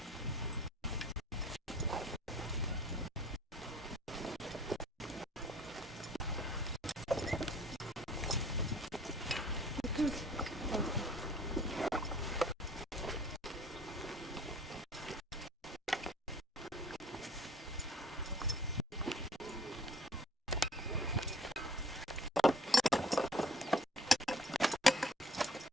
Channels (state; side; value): normal; both; correlation 0.52